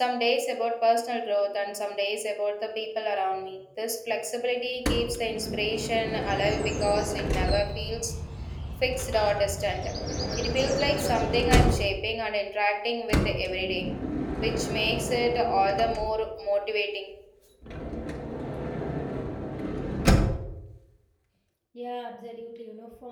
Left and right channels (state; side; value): identical; both; correlation 1.00